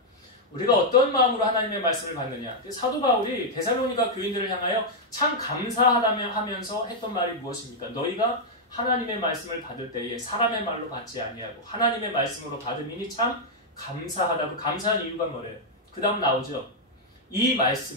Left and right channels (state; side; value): normal; both; correlation -0.03